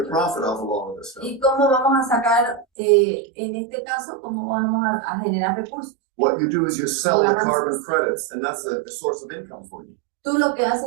profit off of all of this stuff? ¿Y cómo vamos a sacar, en este caso, cómo vamos a generar recursos? What you do is you sell the carbon credits, and that's a source of income for you. Tú lo que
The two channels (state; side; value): drops out; left; at 2.7 s